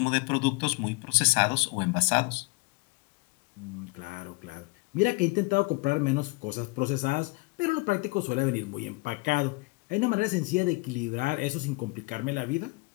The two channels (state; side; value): quieter; right; 26.5 dB